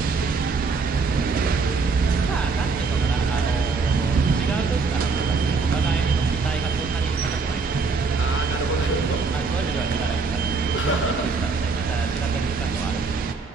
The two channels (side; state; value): left; quieter; 4.5 dB